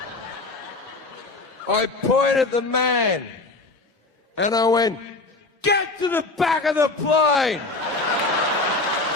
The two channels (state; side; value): quieter; right; 3.3 dB